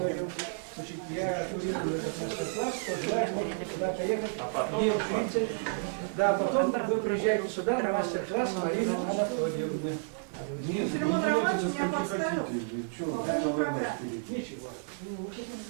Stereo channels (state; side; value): silent; left; digital silence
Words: Значит, я курирую этот мастер-класс, кто желает, можете туда поехать. Да, потом вы приезжаете сюда на мастер-класс Марины Анатольевны. Филимон Романович меня подставил. По поводу программы. Ничего.